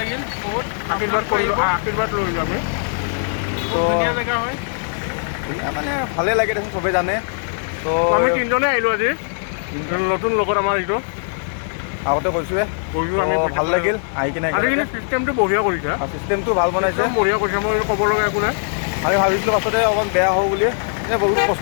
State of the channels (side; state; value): right; silent; 66 dB below the other